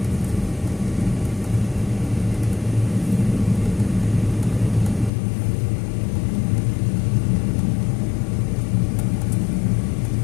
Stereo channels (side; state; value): right; drops out; at 5.1 s